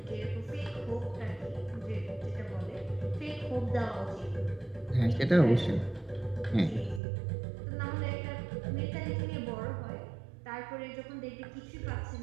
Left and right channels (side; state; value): left; drops out; at 7.0 s